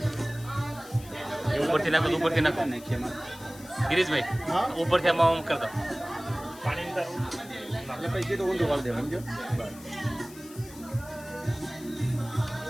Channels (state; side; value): noise; left; hiss, 19 dB below the sound